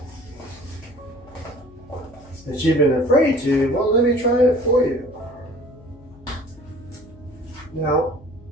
that you've been afraid to, well, let me try it for you. Now,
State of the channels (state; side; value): noise; left; hum, 24 dB below the sound